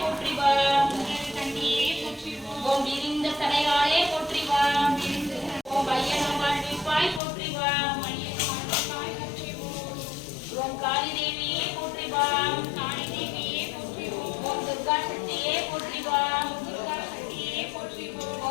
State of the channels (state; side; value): drops out; right; at 7.2 s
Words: போற்றிவாம். ஓம் விரிந்த தடையாளே போற்றிவாம். ஓம் ஐயனம் வாழ்விப்பாய் போற்றிவாம். ஓம் காளி தேவியே போற்றிவாம். ஓம் துர்கா சக்தியே போற்றிவாம்.